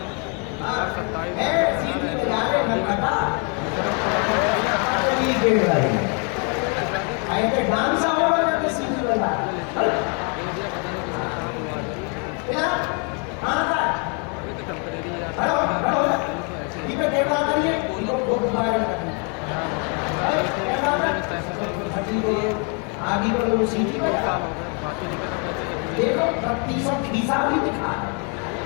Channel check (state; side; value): quieter; right; 37.0 dB